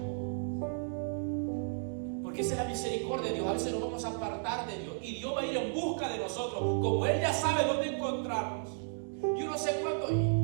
Porque esa es la misericordia de Dios. A veces nos vamos a apartar de Dios y Dios va a ir en busca de nosotros, como Él ya sabe dónde encontrarnos. Yo no sé cuándo.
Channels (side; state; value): left; silent; digital silence